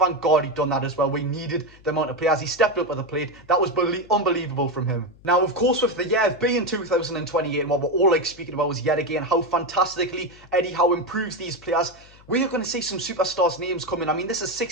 God he'd done that as well. We needed the amount of players. He stepped up with the plate. That was unbelievable from him. Now, of course, with the year being 2028, and what we're all speaking about is yet again how fantastically Eddie Howe improves these players. We are going to see some superstars' names coming. I mean, this is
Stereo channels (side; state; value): left; noise; hum, 25 dB below the sound